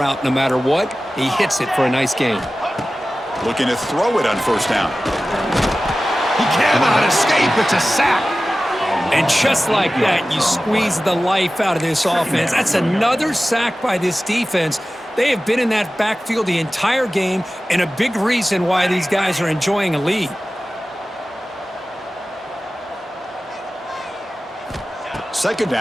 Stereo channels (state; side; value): normal; both; correlation 0.96